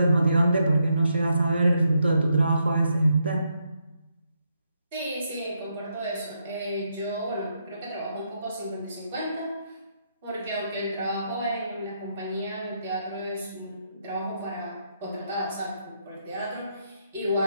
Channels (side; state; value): both; inverted; correlation -0.79